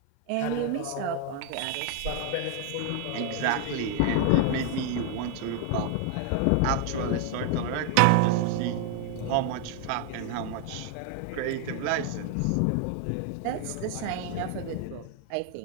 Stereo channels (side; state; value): both; different; correlation 0.00